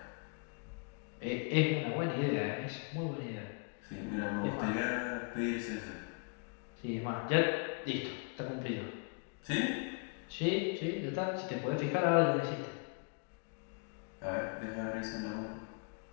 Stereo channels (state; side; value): quieter; right; 37.1 dB